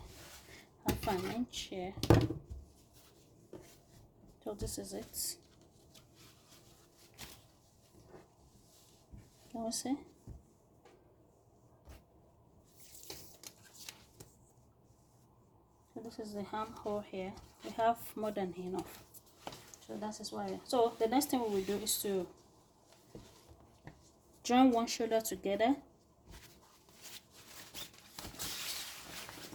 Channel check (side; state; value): both; identical; correlation 1.00